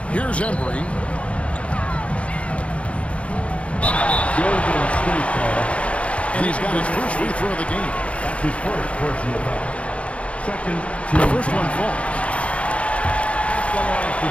Here's Embry. And he's got his first free throw of the game. That's his first personal foul. Second, The first one falls.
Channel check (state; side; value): late; right; 0.062 ms